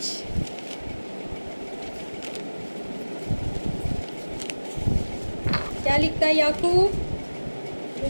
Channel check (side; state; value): both; inverted; correlation -1.00